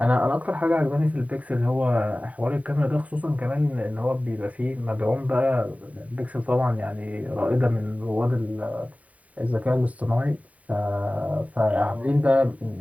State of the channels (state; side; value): late; left; 0.069 ms